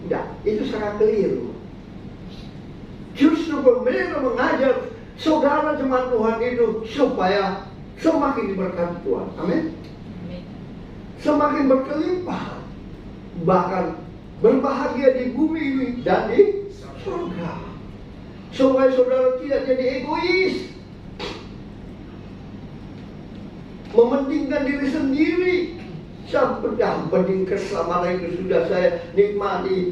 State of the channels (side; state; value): both; identical; correlation 1.00